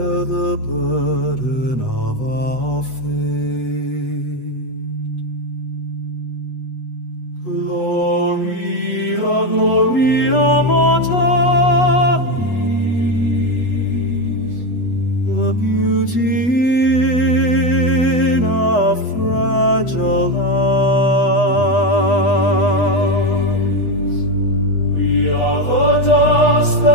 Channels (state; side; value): late; right; 8.1 ms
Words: the burden of our faith. Gloria, Gloria mortalis, the beauty in our fragile lives. We are the dust